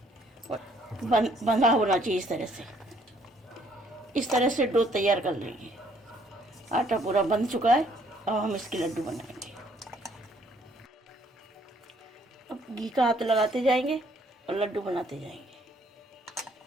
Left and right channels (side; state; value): both; normal; correlation 0.64